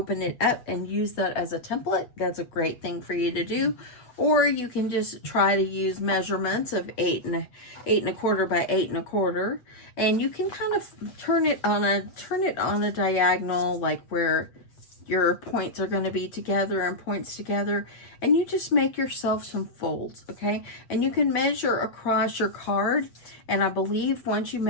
it up and use that as a template. That's a great thing for you to do. Or you can just try to use measurements of 8 1/4 by 8 1/4, and you can kind of turn it on a diagonal, like where your points are going to be together and points together, and you just make yourself some folds, okay? And you can measure across your card, and I believe once you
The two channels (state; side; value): late; right; 8.1 ms